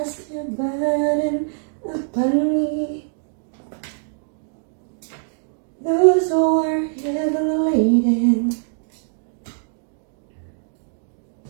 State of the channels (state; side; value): silent; left; digital silence